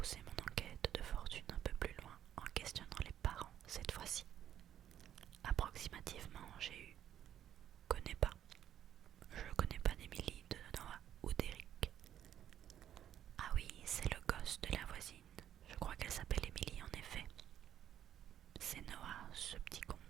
mon enquête de fortune un peu plus loin en questionnant les parents cette fois-ci. Approximativement, j'ai eu connais pas. Je connais pas d'Émilie, de Noah ou d'Eric. Ah oui, c'est le gosse de la voisine. Je crois qu'elle s'appelle Émilie en effet. C'est Noah, ce petit con.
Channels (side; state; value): left; quieter; 10.6 dB